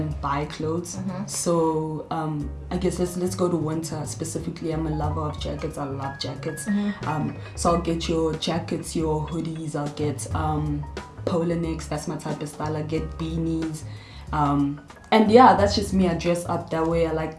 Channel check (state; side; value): identical; both; correlation 1.00